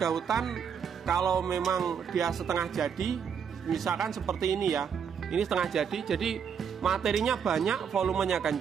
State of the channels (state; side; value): quieter; left; 7.2 dB